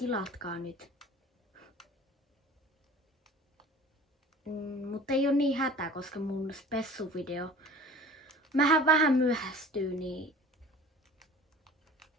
nyt. Mutta ei oo niin hätä, koska mun spessuvideo vähän myöhästyy, niin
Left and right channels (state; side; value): normal; both; correlation 0.43